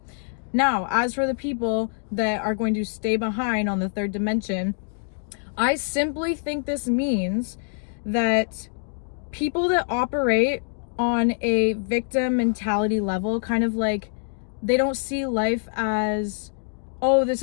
Now, as for the people that are going to stay behind on the third dimension, I simply think this means that people that operate on a victim mentality level, kind of like, they don't see life as, oh, this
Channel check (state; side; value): silent; right; digital silence